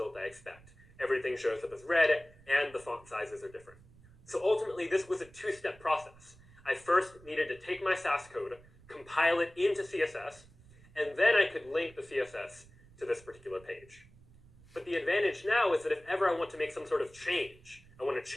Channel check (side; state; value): right; noise; rumble, 24 dB below the sound